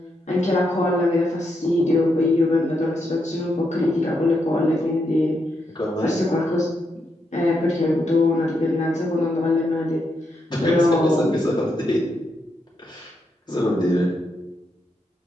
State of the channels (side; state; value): both; normal; correlation 0.81